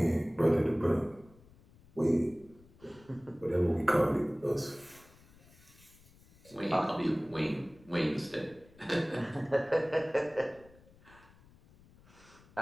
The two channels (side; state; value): left; noise; rumble, 26 dB below the sound